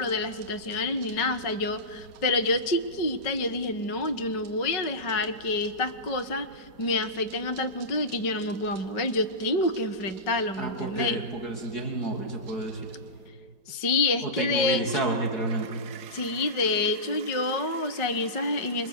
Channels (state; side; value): late; right; 5.3 ms